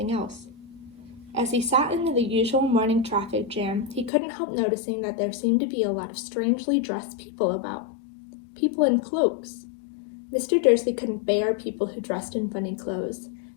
else. As he sat in the usual morning traffic jam, he couldn't help noticing that there seemed to be a lot of strangely dressed people about. People in cloaks. Mr. Dursley couldn't bear people who dressed in funny clothes,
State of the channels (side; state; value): right; drops out; at 4.1 s